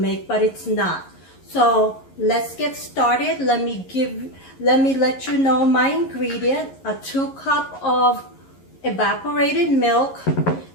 but it's not. So let's get started. Let me let you know my ingredient: a 2 cups of evaporated milk,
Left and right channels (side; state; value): right; late; 11 ms